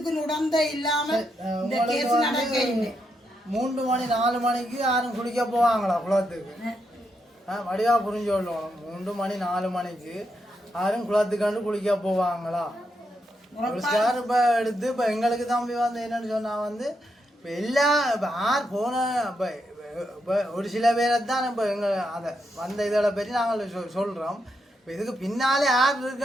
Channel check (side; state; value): both; normal; correlation 0.82